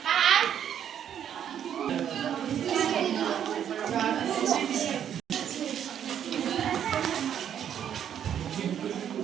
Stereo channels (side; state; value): left; quieter; 9.3 dB